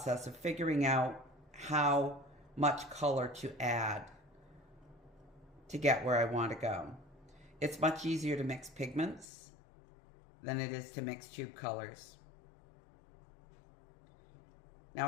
of figuring out how much color to add to get where I want to go. It's much easier to mix pigments than it is to mix tube colors.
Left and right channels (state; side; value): drops out; right; at 9.2 s